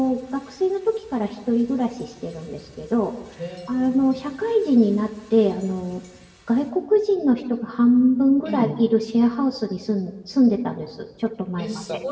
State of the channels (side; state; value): both; identical; correlation 1.00